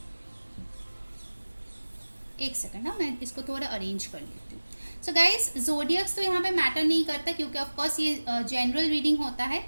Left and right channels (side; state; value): both; inverted; correlation -1.00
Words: एक सेकंड ना, मैं इसको थोड़ा अरेंज कर लेती हूँ। सो गाइस, जोडियक्स तो यहाँ पे मैटर नहीं करता क्योंकि ऑफ कोर्स ये जनरल रीडिंग होता है,